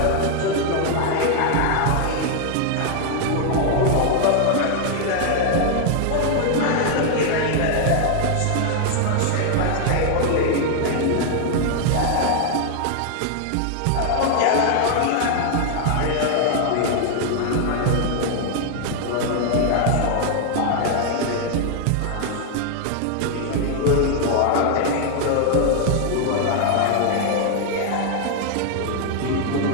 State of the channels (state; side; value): different; both; correlation 0.00